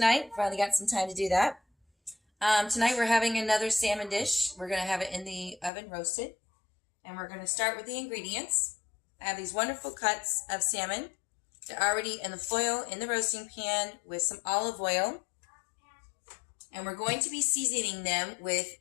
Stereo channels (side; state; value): right; drops out; at 5.7 s